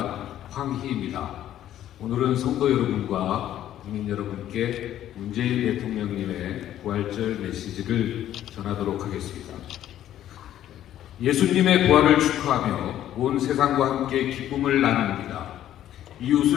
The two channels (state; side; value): quieter; right; 11.9 dB